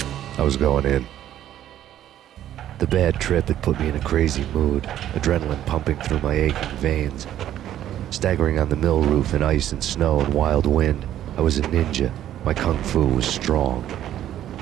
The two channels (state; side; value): quieter; left; 11.8 dB